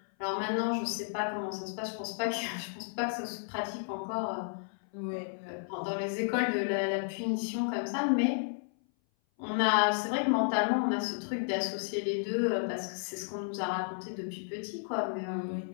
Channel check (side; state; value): right; silent; 56 dB below the other